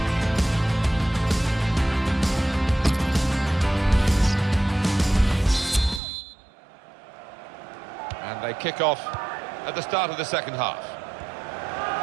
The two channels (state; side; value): drops out; left; at 6.0 s